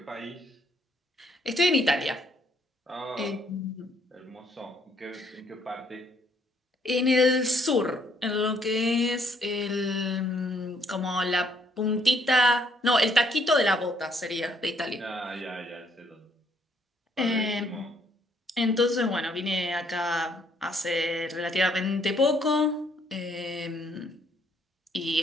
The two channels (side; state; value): both; normal; correlation 0.68